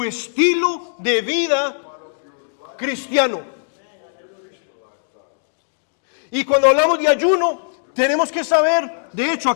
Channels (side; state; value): right; silent; digital silence